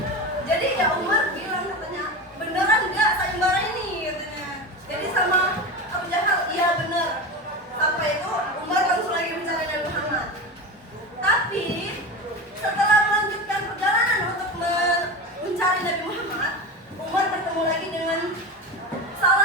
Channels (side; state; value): both; normal; correlation 0.24